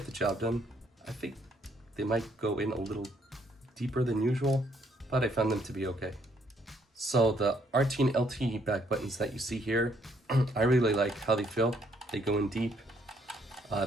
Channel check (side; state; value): both; normal; correlation 0.69